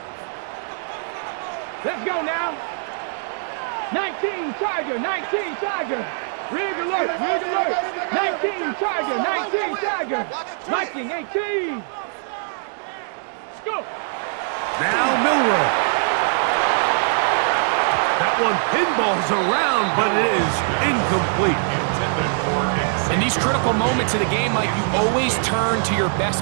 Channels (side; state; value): left; silent; digital silence